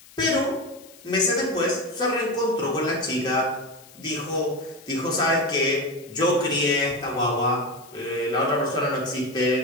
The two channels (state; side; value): noise; left; hiss, 23 dB below the sound